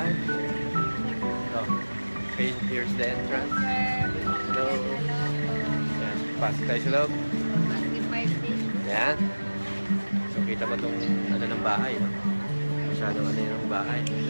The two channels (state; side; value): inverted; both; correlation -1.00